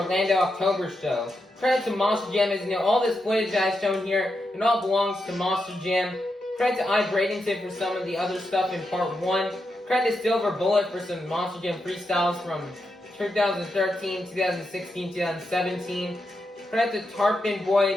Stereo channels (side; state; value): both; normal; correlation 0.85